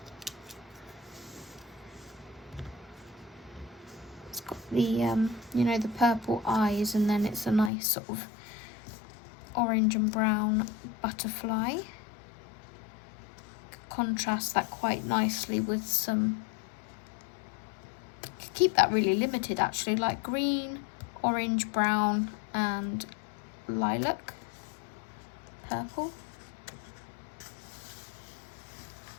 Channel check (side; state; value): right; drops out; at 7.7 s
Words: It's got the, you know, the purple eyes, and then it's a nice sort of orange and brown butterfly. Contrast that quite nicely with some, could keep that really limited actually, like green, orange, brown and lilac, purple.